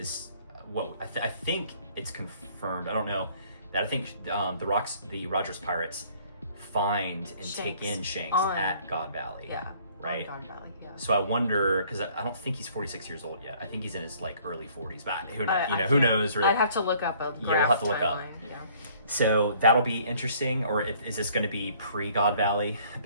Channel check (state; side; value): inverted; both; correlation -0.58